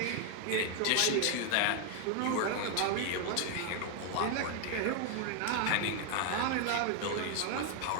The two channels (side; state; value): both; different; correlation 0.01